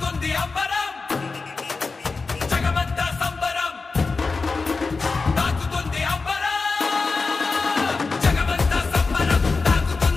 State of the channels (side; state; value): right; quieter; 4.2 dB